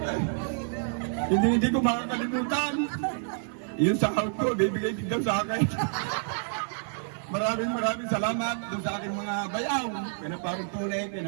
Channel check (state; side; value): silent; left; 59 dB below the other